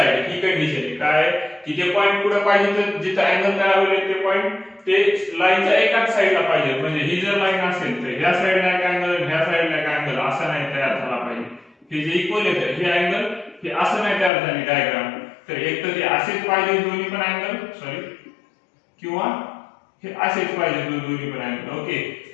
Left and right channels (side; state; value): right; drops out; at 14.3 s